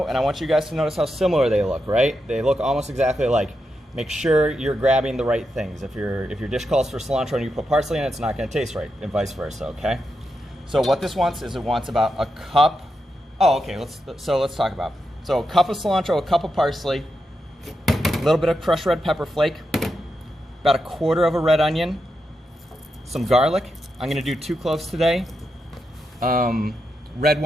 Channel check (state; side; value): normal; both; correlation 0.86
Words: and I want you guys to notice how similar they look, right? They look almost exactly alike. Make sure you're grabbing the right things. If your dish calls for cilantro and you put parsley in it, it's not going to taste right, and vice versa, okay? So what this wants is it wants about a cup. Oh, okay, let's talk about. So a cup of cilantro, a cup of parsley, a little bit of crushed red pepper flake, about 1/4 of a red onion, some garlic. I'm going to do 2 cloves today. Red